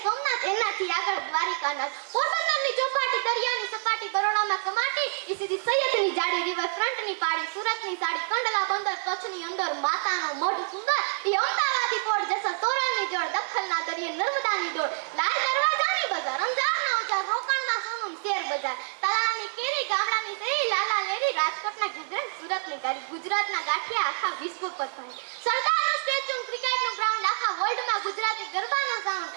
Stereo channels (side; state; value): left; silent; digital silence